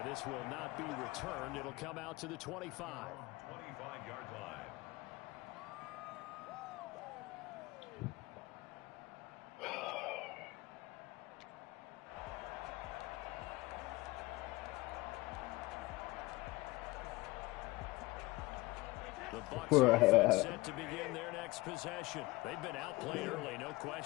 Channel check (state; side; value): quieter; right; 21.8 dB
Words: this will not be returned. It'll come out to the 25. 25-yard line. The Bucs are set to begin their next possession. They've been outplayed early, no